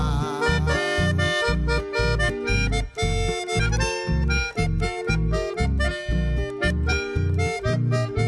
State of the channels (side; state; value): both; identical; correlation 1.00